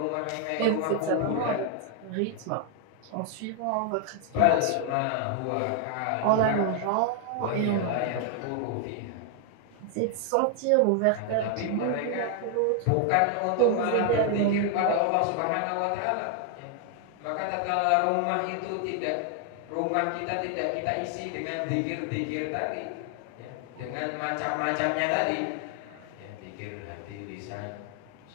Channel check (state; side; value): different; both; correlation 0.00